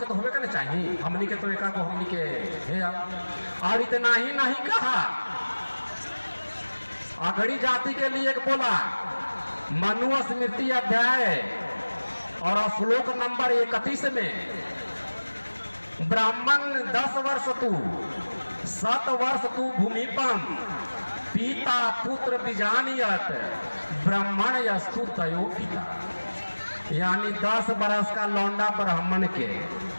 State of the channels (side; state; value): both; inverted; correlation -1.00